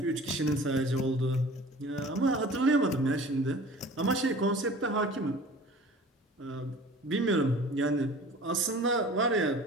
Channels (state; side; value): normal; both; correlation 0.43